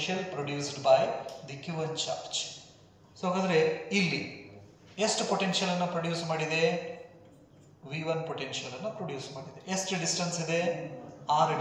produced by the Q1 charge. So ಹಾಗಾದ್ರೆ ಇಲ್ಲಿ ಎಷ್ಟು ಪೊಟೆನ್ಷಿಯಲ್ ಅನ್ನು ಪ್ರೊಡ್ಯೂಸ್ ಮಾಡಿದೆ? V1 ಪೊಟೆನ್ಷಿಯಲ್ ಅನ್ನು ಪ್ರೊಡ್ಯೂಸ್ ಮಾಡಿದೆ. ಎಷ್ಟು ಡಿಸ್ಟೆನ್ಸ್ ಇದೆ? R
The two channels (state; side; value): identical; both; correlation 1.00